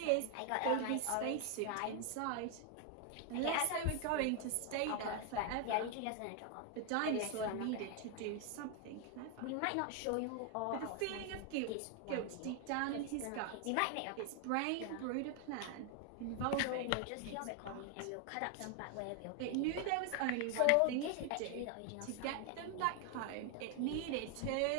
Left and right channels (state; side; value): different; both; correlation 0.01